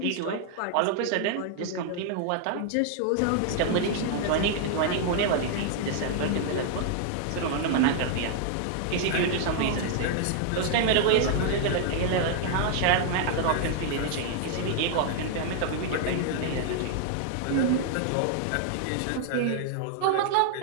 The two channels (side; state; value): both; different; correlation 0.00